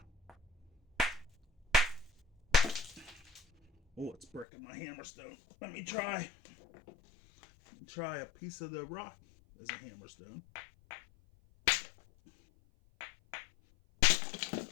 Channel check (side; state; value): right; drops out; at 4.5 s